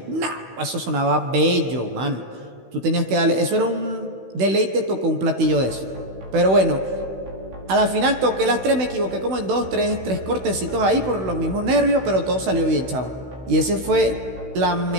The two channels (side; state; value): left; late; 16 ms